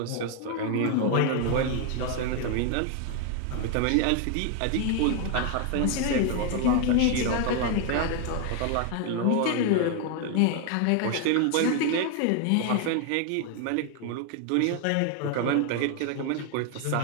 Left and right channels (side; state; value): both; different; correlation 0.01